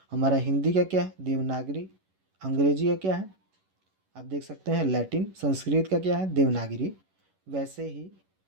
हमारा हिंदी का क्या है? देवनागरी। अंग्रेजी का क्या है? आप देख सकते हैं लैटिन। संस्कृत का क्या है? देवनागरी। वैसे ही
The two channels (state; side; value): late; left; 11 ms